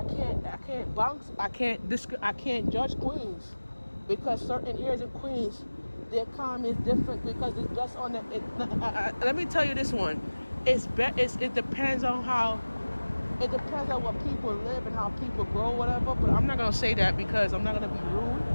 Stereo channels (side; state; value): both; inverted; correlation -1.00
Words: can't judge Queens because certain areas in Queens, the economy is different because it's just on the. Let me tell you this one. It depends on how. It depends on what people live and how people grow, whatever. But I'm not gonna say that because I'm not gonna be rude.